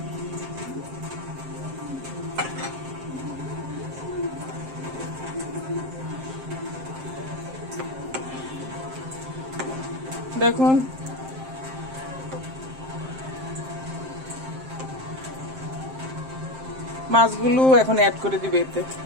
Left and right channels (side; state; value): left; late; 7.6 ms